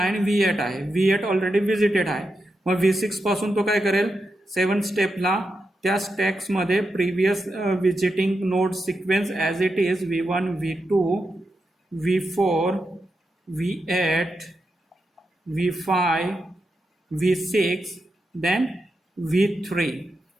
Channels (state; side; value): normal; both; correlation 0.87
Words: आणि V8 आहे. V8 ऑलरेडी विजिटेड आहे. मग V6 पासून तो काय करेल, 7 स्टेपला त्या स्टॅक्समध्ये previous visiting node sequence as it is V1 V2 V4 V8 V5 V6 then V3